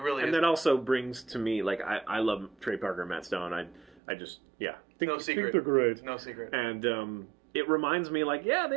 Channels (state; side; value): drops out; left; at 4.0 s